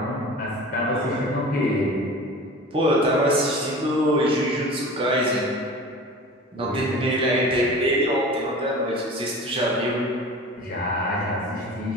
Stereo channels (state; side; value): normal; both; correlation 0.38